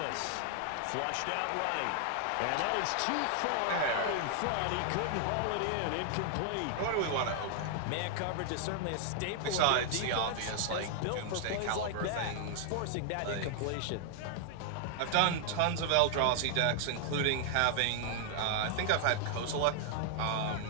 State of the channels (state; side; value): different; both; correlation 0.00